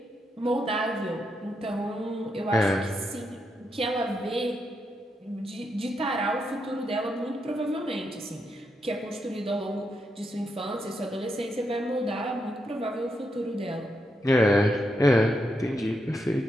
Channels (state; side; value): normal; both; correlation 0.82